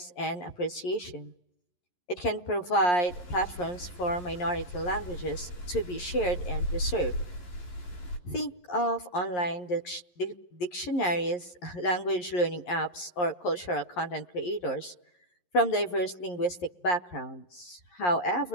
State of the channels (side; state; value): right; late; 11 ms